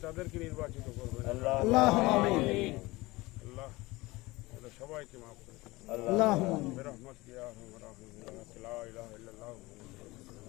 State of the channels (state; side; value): quieter; right; 21.3 dB